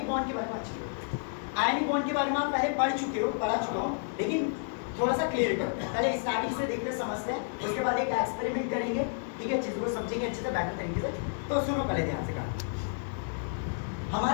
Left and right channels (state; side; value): silent; right; digital silence